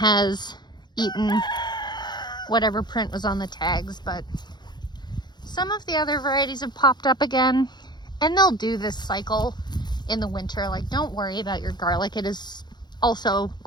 eaten whatever print was on the tags, but some of the other varieties have popped up again, and they'll do this cycle in the winter. Like, don't worry about your garlic. It is also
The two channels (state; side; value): late; right; 0.21 ms